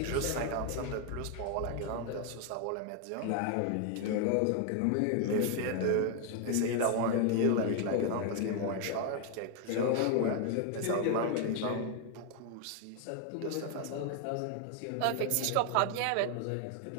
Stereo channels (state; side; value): different; both; correlation 0.00